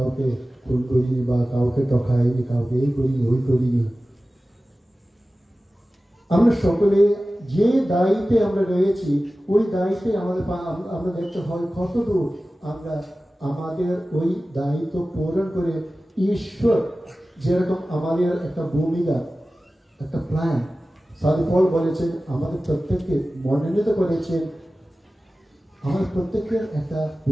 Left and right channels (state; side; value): normal; both; correlation 0.96